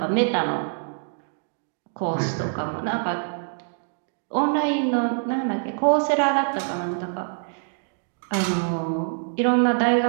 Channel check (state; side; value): silent; left; digital silence